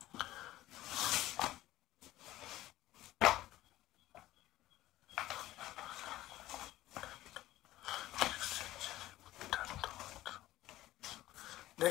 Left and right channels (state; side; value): quieter; right; 15.6 dB